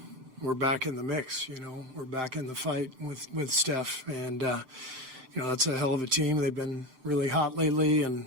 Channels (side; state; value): left; late; 7.7 ms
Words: back in the mix. We're back in the fight with Steph, and that's a hell of a team. They've been really hot lately and